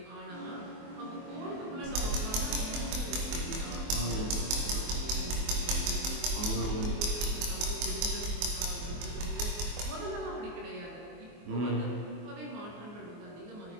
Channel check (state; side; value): late; left; 24 ms